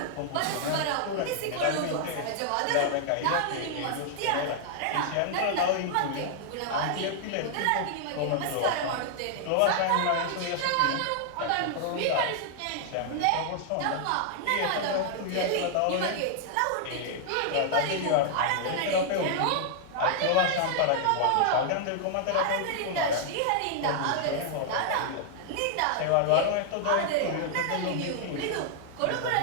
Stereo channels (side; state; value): both; different; correlation -0.01